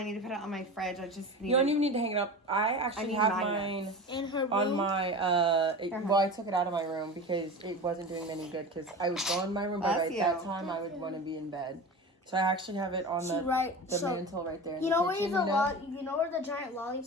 need to put it on my fridge. I just need. You don't even need to hang it up. I actually have mine In her room. on my. Well, I took it out of my room because it wasn't doing any good. Because I would go in my room, but at that time I would want to be in bed. So I actually have it on the mantle right there. You know where you know where the giant lollipop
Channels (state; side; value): normal; both; correlation 0.30